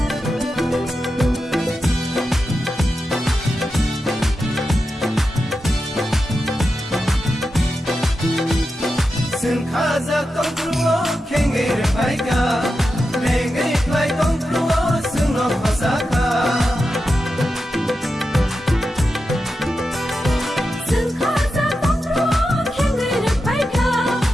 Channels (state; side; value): normal; both; correlation 0.89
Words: Sừng khaza tông truo khenge re paika lenge plai tông truo sừng no khasaka Sừng khaza tông truo khenge re paika